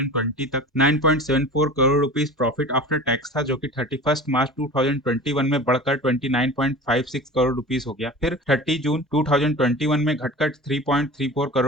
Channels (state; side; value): normal; both; correlation 0.36